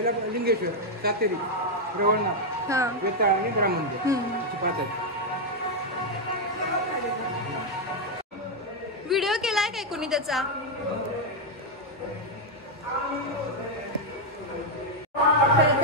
लिंगेश्वर, सातेरी, रवळनाथ, वेताळ आणि ग्राममंदिर. व्हिडिओ केलाय काय कोणी त्याचा?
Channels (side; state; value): both; normal; correlation 0.00